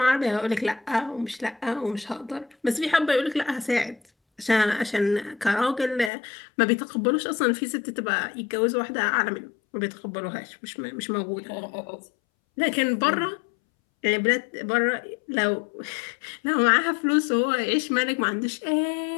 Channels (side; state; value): right; drops out; at 6.1 s